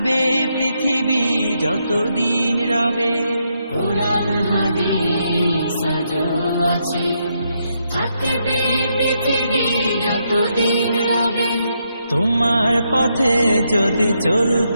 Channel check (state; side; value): inverted; both; correlation -0.79